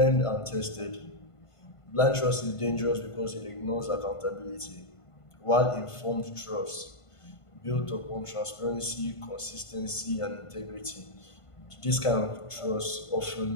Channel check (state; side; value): late; right; 1.5 ms